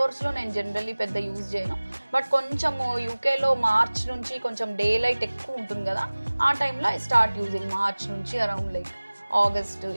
లో నేను జనరల్లీ పెద్ద యూజ్ చేయను. బట్ కొంచెం యూకేలో మార్చ్ నుంచి కొంచెం డే లైట్ ఎక్కువ ఉంటుంది కదా, ఆ టైంలో ఐ స్టార్ట్ యూజింగ్ మార్చ్ నుంచి అరౌండ్ లైక్ ఆగస్ట్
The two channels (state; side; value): inverted; both; correlation -1.00